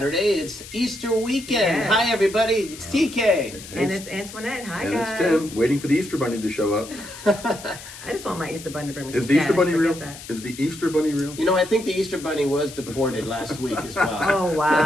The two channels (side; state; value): left; noise; hiss, 15 dB below the sound